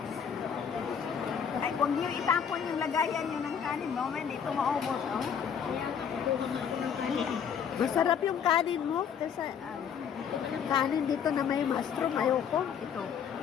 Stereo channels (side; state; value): right; quieter; 7.6 dB